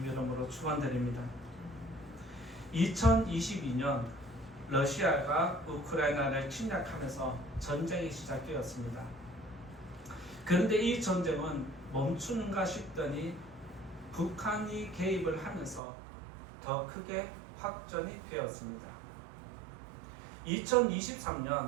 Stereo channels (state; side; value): drops out; left; at 15.8 s